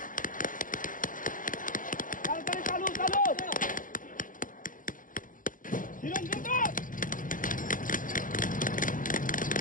তাড়াতাড়ি চালু চালু হিরণ রুকো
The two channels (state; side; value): late; right; 0.39 ms